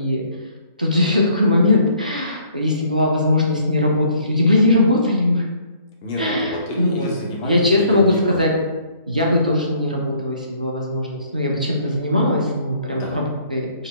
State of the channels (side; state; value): both; inverted; correlation -0.60